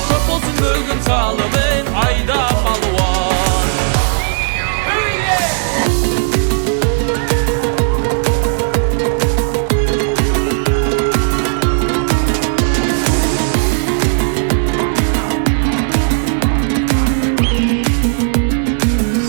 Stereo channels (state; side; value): silent; left; digital silence